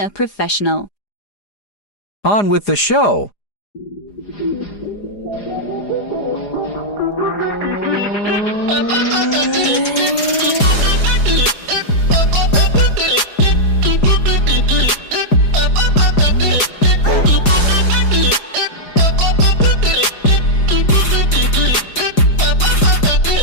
a professional. On with the show.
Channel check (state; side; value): late; right; 4.9 ms